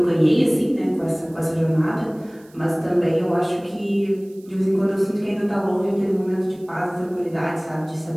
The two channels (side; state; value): right; noise; hiss, 29 dB below the sound